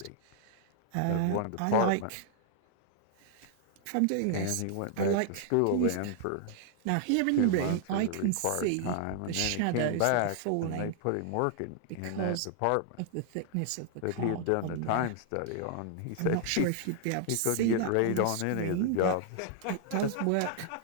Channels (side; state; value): both; different; correlation 0.00